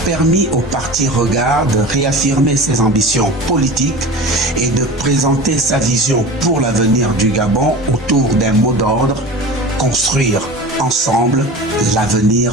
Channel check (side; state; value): both; normal; correlation 0.33